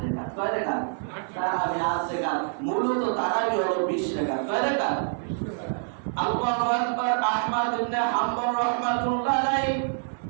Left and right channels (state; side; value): silent; left; 61 dB below the other